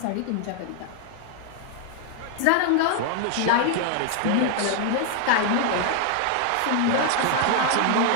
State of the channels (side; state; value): both; different; correlation 0.00